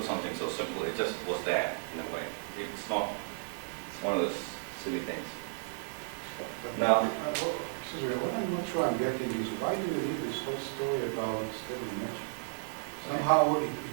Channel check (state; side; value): silent; left; digital silence